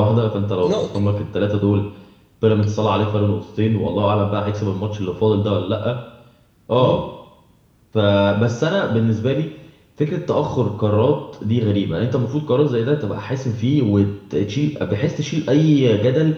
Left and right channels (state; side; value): identical; both; correlation 1.00